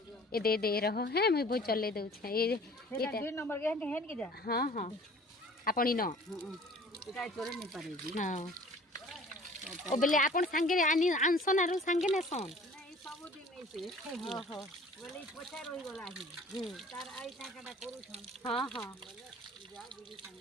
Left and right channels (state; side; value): normal; both; correlation 0.49